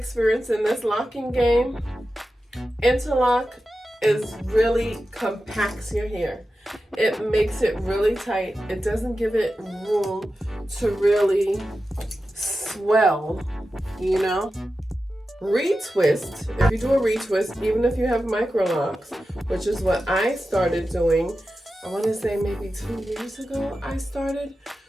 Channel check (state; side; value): normal; both; correlation 0.92